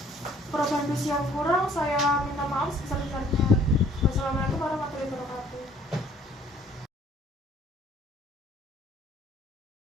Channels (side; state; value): both; normal; correlation 0.58